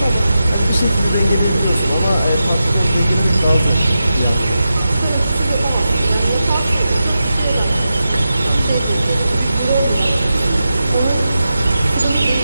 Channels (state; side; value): inverted; both; correlation -0.90